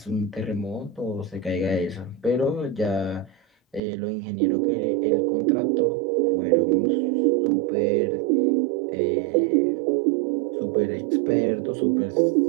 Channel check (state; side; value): drops out; left; at 3.8 s